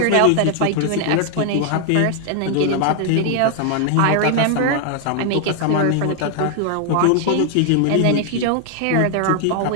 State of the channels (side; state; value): both; different; correlation 0.00